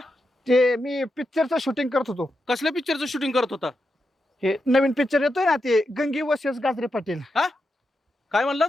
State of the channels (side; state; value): both; normal; correlation 0.86